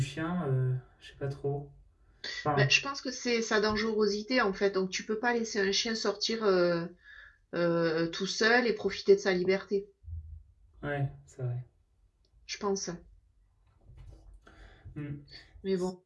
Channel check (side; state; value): both; identical; correlation 1.00